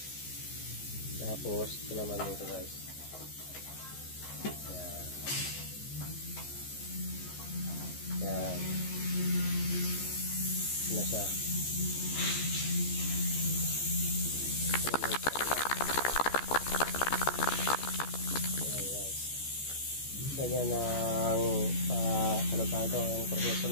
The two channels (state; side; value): late; right; 14 ms